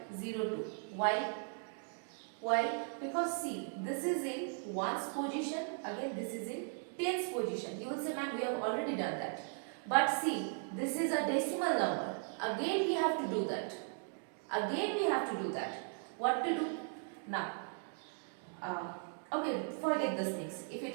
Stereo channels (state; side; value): silent; left; 53 dB below the other